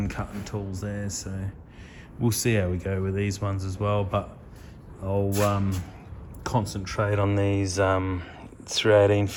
cutting tools there, so we'll see how we go with these ones as well. But I'll concentrate on these 318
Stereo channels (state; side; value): identical; both; correlation 1.00